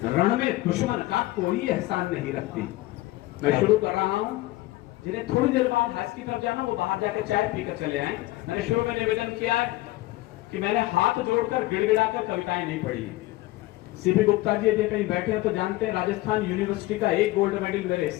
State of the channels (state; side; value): quieter; right; 18.1 dB